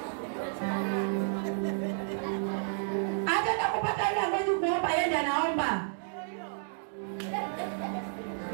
Ataenda kupata ile ambaye kuomba yeye anaomba.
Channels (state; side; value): silent; left; digital silence